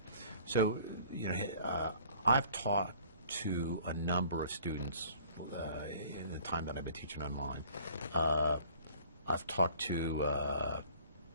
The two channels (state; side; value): inverted; both; correlation -0.52